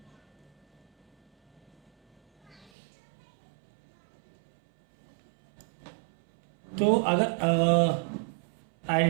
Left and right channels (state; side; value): drops out; left; at 2.7 s